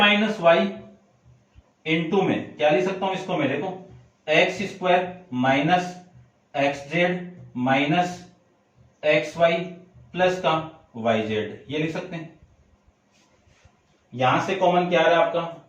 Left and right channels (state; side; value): identical; both; correlation 1.00